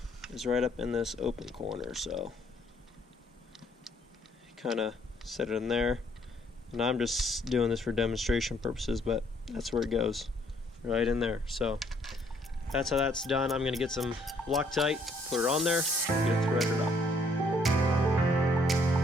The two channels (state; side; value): normal; both; correlation 0.66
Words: Is right up in this open corner. So kind of set it in there, and I'm just doing this for demonstration purposes, but that's where it goes, right in there. So that's how that's done. I'm going to get some Loctite, put it on there, get it threaded up.